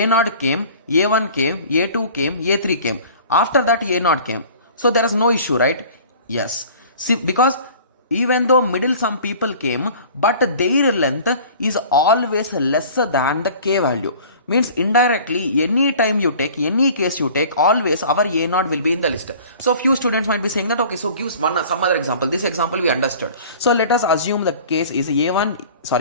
came, a1 came, a2 came, a3 came, after that a0 came, so there is no issue, right? Yes. See, because even though middle some people came, but their length is always lesser than the k value, means indirectly any time you take, any case you take, always our a0 will be in the list. So few students might be saying that, okay, so gives some other example. This example we understood. So let us assume the case is a0,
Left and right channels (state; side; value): inverted; both; correlation -0.45